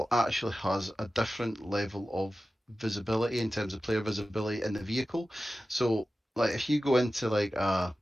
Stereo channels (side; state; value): both; normal; correlation 0.94